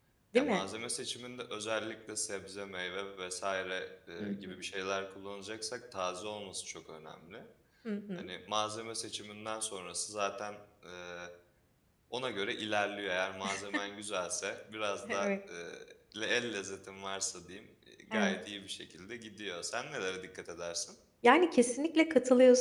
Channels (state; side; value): identical; both; correlation 1.00